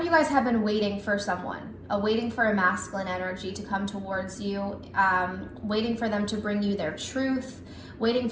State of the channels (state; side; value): identical; both; correlation 1.00